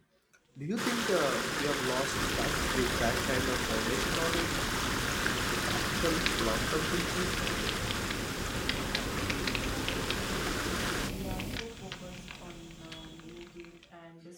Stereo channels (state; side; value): identical; both; correlation 1.00